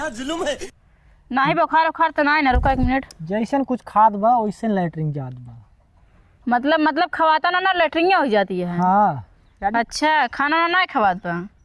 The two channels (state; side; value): identical; both; correlation 1.00